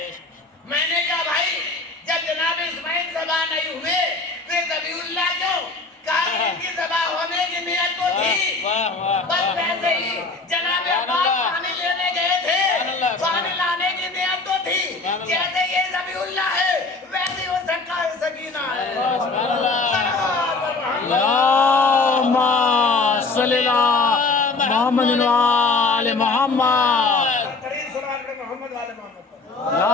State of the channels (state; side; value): quieter; right; 3.8 dB